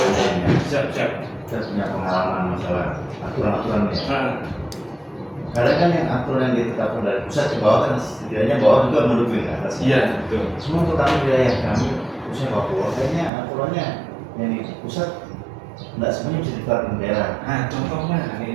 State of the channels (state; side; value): drops out; left; at 13.3 s